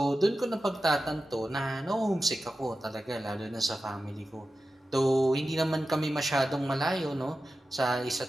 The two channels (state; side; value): normal; both; correlation 0.93